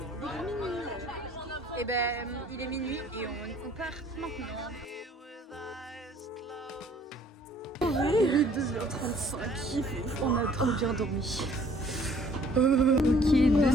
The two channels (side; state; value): both; normal; correlation 0.57